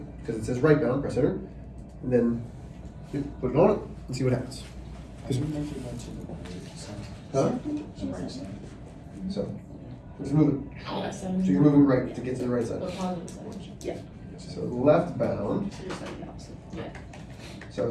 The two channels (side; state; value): both; identical; correlation 1.00